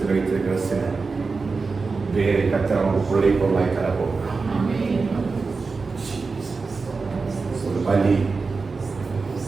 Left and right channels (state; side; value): quieter; left; 4.4 dB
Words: வைத்திருக்கிற சில வேரை கத்த அவங்க கொள்ளை பொருளாய் தரப்போகிறார். ஒரு பலி